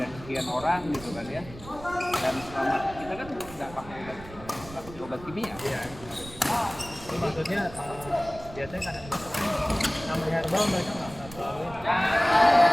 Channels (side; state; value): right; noise; rumble, 16 dB below the sound